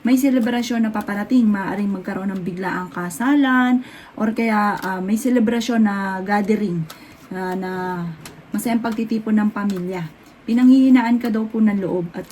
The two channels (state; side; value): identical; both; correlation 1.00